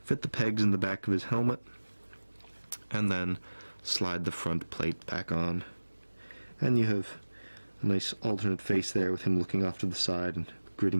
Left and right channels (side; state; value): both; inverted; correlation -1.00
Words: fit the pegs in the back of his helmet, and then slide the front plate back on, and you have a nice alternate face there with him looking off to the side and